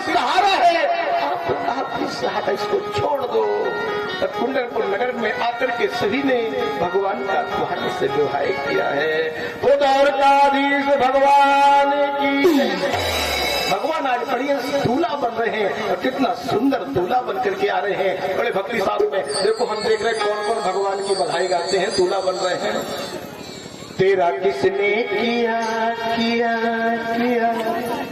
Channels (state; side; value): identical; both; correlation 1.00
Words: सहारा है, आपका भी सहारा, इसको छोड़ दो। तब कुंडनपुर नगर में आकर के सभी ने भगवान का तुम्हारे से विवाह किया है। वो द्वारकाधीश भगवान की। भगवान आज बढ़िया दूल्हा बन रहे हैं, और कितना सुंदर दूल्हा बन करके आ रहे हैं। बड़े भक्ति साथ में देखो हम देख रहे हैं कौन कौन भगवान की बधाई गाते हैं, दूल्हा बन रहे हैं। तेरा किसने किया किया किया,